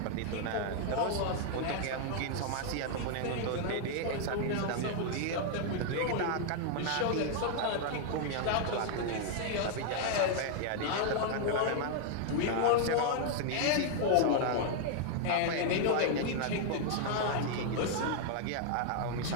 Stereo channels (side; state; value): both; different; correlation 0.00